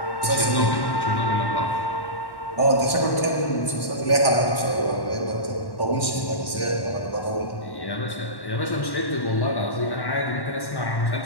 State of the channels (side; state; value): right; late; 1.1 ms